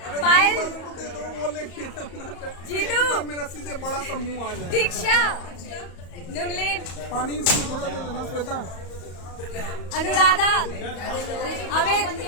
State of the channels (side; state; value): right; late; 34 ms